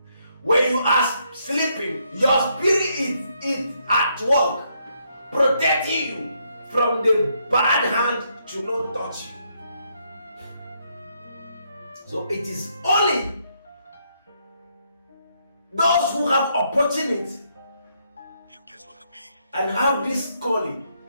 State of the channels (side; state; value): both; inverted; correlation -0.75